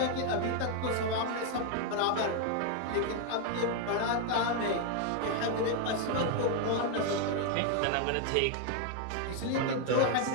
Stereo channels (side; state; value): both; different; correlation 0.00